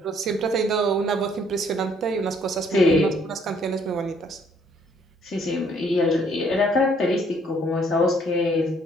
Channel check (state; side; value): normal; both; correlation 0.64